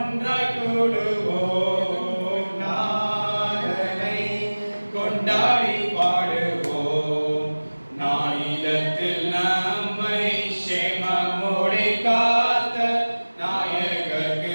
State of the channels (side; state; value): both; inverted; correlation -1.00